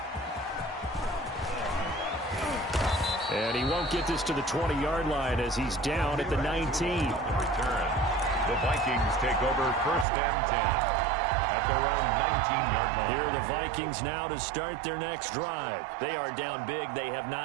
And he won't get this to the 20-yard line as he's down at the 19. Return. The Vikings take over 1st and 10 at their own 19-yard line. Here are the Vikings now to start their next drive. They are down big. They have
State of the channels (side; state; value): left; drops out; at 10.1 s